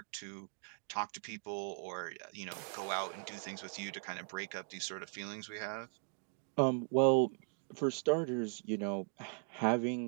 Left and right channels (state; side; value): silent; left; 52 dB below the other